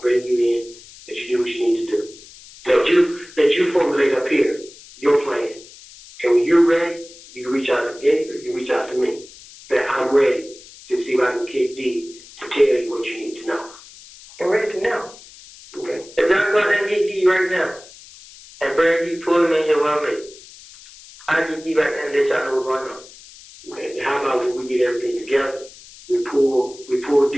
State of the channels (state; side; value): noise; left; hiss, 20 dB below the sound